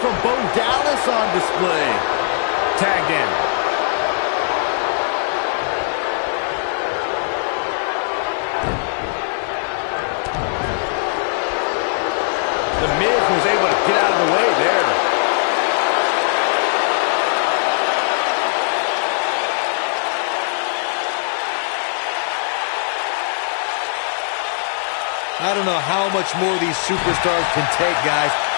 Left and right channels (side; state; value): right; silent; digital silence